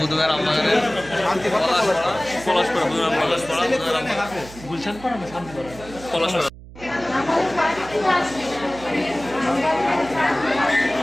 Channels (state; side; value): noise; right; hum, 17 dB below the sound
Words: আমবাগানে পলাশপাড়া বুধবার পলাশপাড়া গুলশান পাড়া না শান্তিপাড়া পলাশপাড়া